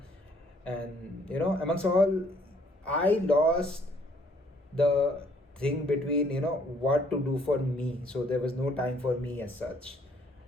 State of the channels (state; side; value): normal; both; correlation 0.64